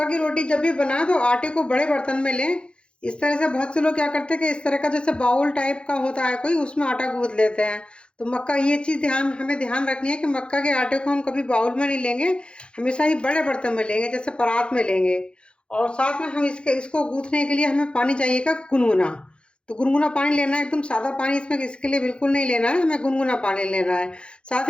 की रोटी जब भी बनाए तो आटे को बड़े बर्तन में लें। इस तरह से बहुत से लोग क्या करते हैं कि इस तरह का जैसे बाउल टाइप का होता है कोई, उसमें आटा गूंथ लेते हैं। तो मक्का ये चीज़ हमें ध्यान रखनी है कि मक्का के आटे को हम कभी बाउल में नहीं लेंगे, हमेशा ही बड़े बर्तन में लेंगे जैसे परात में लेंगे। और साथ में हम इसको गूंथने के लिए हमें पानी चाहिएगा गुनगुना। तो गुनगुना पानी लेना है, एकदम सादा पानी इसमें इसके लिए बिल्कुल नहीं लेना है, हमें गुनगुना पानी लेना है। साथ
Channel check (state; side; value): late; right; 0.056 ms